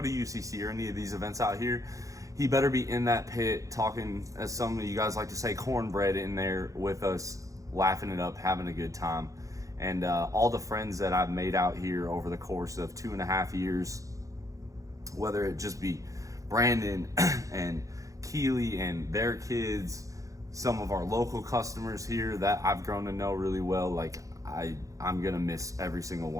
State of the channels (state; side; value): late; left; 0.16 ms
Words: UCC or any of these events out here, he better be in that pit talking, as some of you guys like to say, cornbread in there with us, laughing it up, having a good time. And all the friends that I've made out here over the course of 2.5 years, whether it just be Brandon and Keely and their kids, some of our local customers here that I've grown to know really well, like I'm gonna miss every single